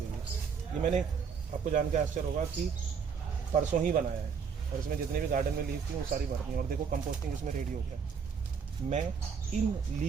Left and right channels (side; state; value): left; quieter; 6.3 dB